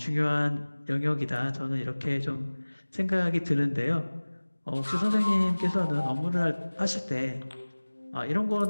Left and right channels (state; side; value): inverted; both; correlation -1.00